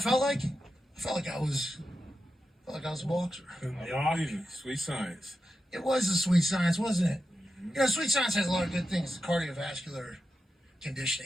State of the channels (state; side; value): normal; both; correlation 0.90